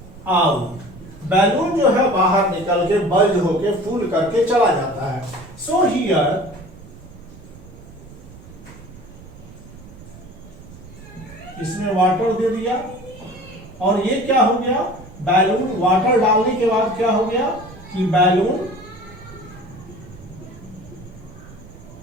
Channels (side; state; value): right; noise; rumble, 19 dB below the sound